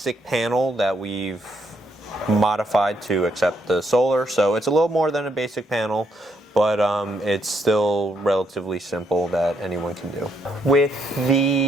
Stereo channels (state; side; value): normal; both; correlation 0.74